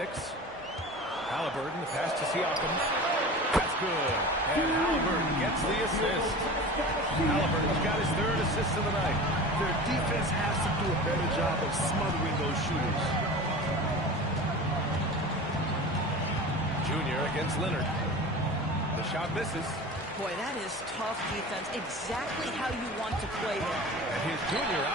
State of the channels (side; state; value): both; normal; correlation 0.35